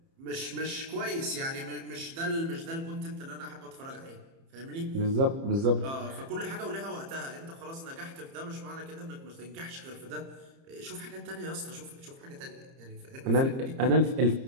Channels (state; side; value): late; left; 30 ms